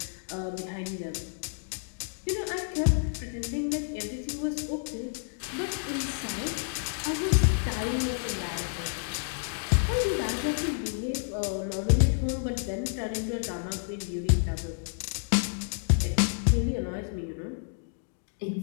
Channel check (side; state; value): right; silent; digital silence